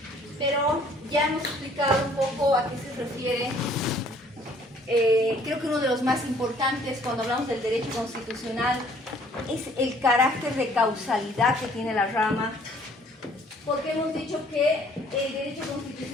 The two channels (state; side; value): normal; both; correlation 0.59